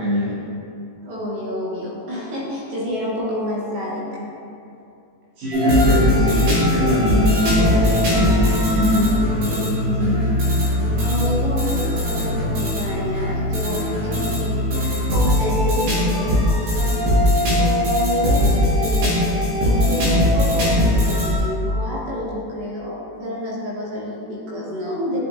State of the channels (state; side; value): late; left; 18 ms